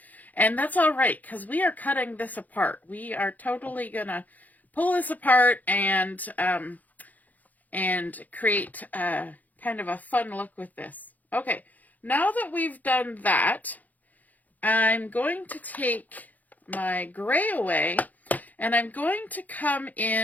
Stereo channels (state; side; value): late; right; 0.080 ms